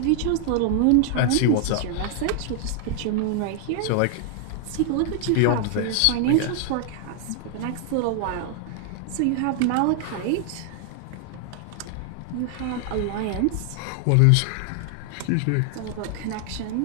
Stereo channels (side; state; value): both; different; correlation 0.00